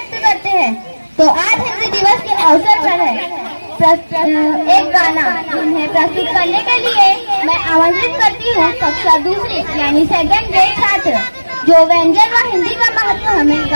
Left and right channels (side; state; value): both; inverted; correlation -1.00